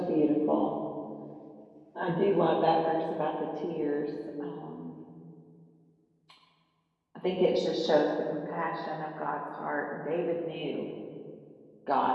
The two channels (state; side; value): identical; both; correlation 1.00